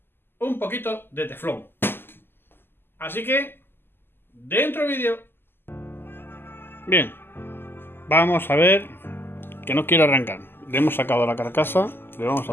un poquito de teflón. Así que, dentro vídeo. Bien, vamos a ver que no quiere arrancar. Le hemos sacado la carcasa, le vamos a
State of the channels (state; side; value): late; right; 0.10 ms